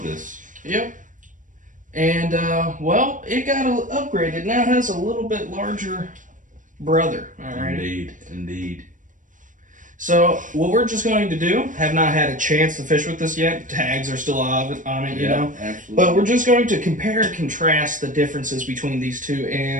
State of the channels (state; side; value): late; left; 0.38 ms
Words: Yep. And, well, it got upgraded. It now has a little bit larger brother. All right. Indeed. Indeed. So, what we're just going to do, have not had a chance to fish with this yet. Tags are still on it, you know. Absolutely. But we're just going to compare and contrast the differences between these two